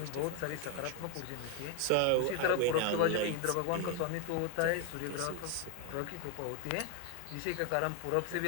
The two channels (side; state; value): both; different; correlation 0.01